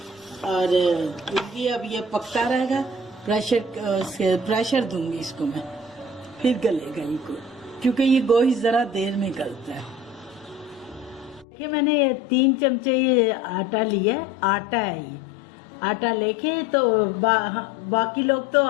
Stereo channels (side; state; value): right; drops out; at 11.5 s